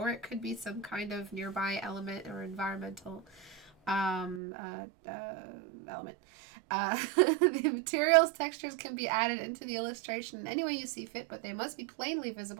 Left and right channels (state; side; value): drops out; left; at 4.4 s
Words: it could be some kind of nearby element or environmental element. The materials, textures can be added into the illustration in any way you see fit, but they must be plainly